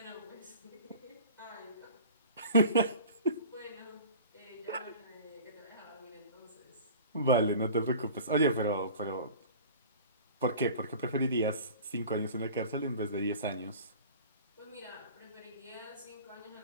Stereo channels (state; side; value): inverted; both; correlation -0.41